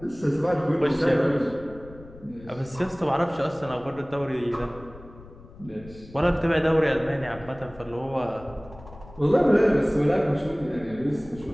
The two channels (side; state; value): left; noise; rumble, 19 dB below the sound